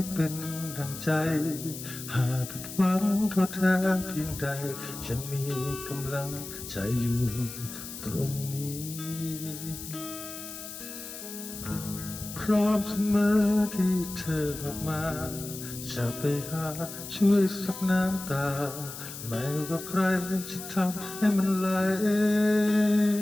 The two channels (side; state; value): left; noise; hiss, 10 dB below the sound